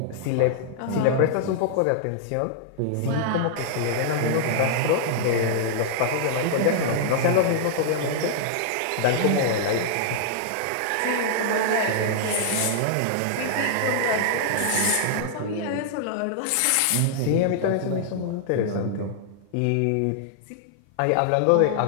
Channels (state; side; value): different; both; correlation -0.01